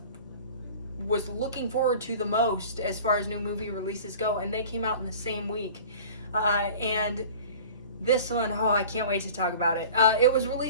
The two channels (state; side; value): inverted; both; correlation -0.42